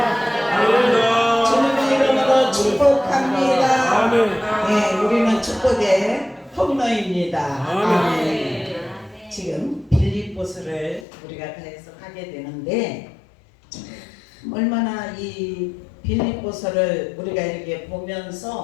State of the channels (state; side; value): drops out; right; at 11.1 s